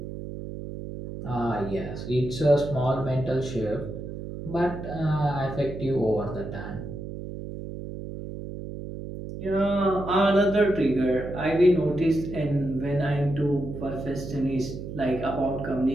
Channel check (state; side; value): noise; right; hum, 9 dB below the sound